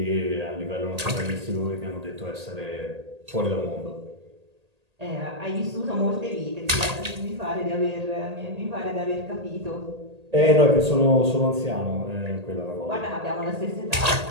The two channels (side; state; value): left; late; 1.8 ms